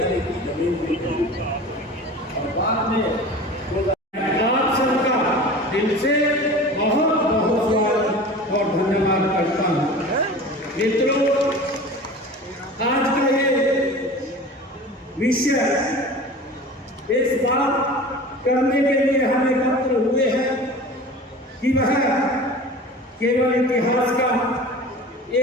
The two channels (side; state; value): both; normal; correlation 0.37